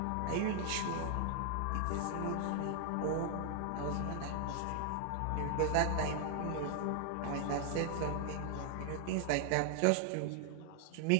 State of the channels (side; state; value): both; different; correlation 0.00